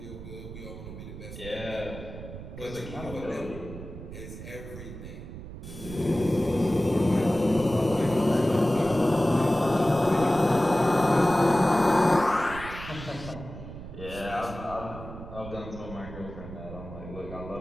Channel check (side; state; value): right; noise; rumble, 12 dB below the sound